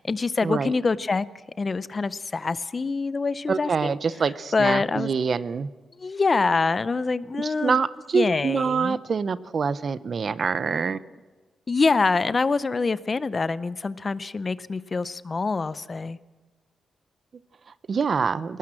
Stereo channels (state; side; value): normal; both; correlation 0.88